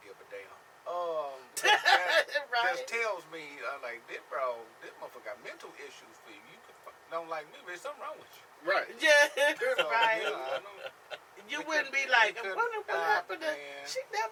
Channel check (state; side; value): identical; both; correlation 1.00